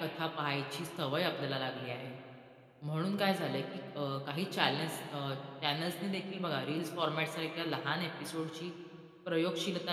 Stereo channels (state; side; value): identical; both; correlation 1.00